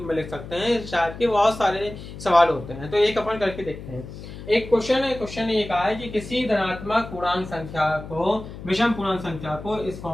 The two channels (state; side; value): noise; left; hum, 12 dB below the sound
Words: में लिख सकते हैं। शायद के बहुत सारे सवाल होते हैं, तो एक अपन करके देखते हैं। एक क्वेश्चन है, क्वेश्चन ये कहा है कि किसी धनात्मक पूर्णांक संख्या को, विषम पूर्णांक संख्या को इस